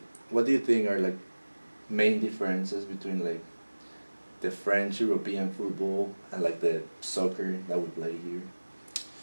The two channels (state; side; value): inverted; both; correlation -1.00